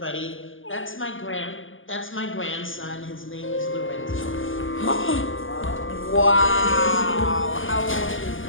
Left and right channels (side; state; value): right; late; 0.58 ms